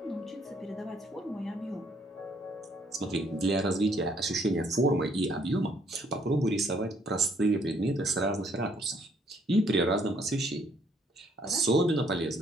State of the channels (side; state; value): both; normal; correlation 0.66